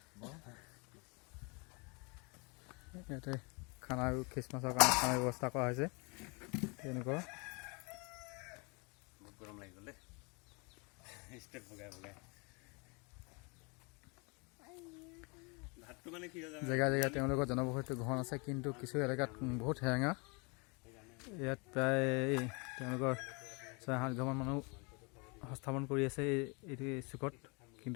ইয়াতে খানা আৰু খ্ৰীষ্টমাছৰ কাৰণে খানাৰ ব্যৱস্থা কৰা হৈছে। তেনেকুৱা বহুত গৰম লাগি গ'ল দেই। ষ্টেপ ভগাই ভগাই ভাতটো মানে কি হয় জেগাই জেগাই তেওঁলোকৰ জনবসতি ঘন আছে, কিন্তু কিছু এলেকাত বহুত সেৰেঙা। ইয়াত প্ৰায় তেওঁলোকৰ 6-7 ঘৰমান মানুহ সংস্থাপন কৰি আছে এইটো চুকত।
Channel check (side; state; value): right; quieter; 31.0 dB